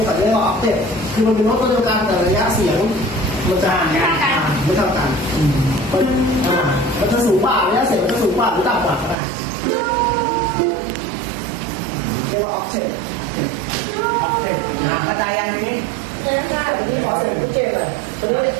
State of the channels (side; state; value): left; drops out; at 9.2 s